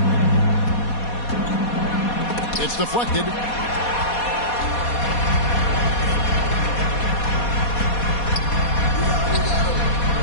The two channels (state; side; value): late; right; 4.2 ms